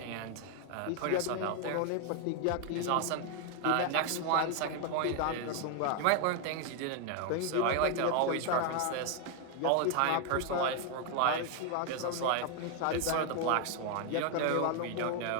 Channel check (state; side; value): different; both; correlation 0.01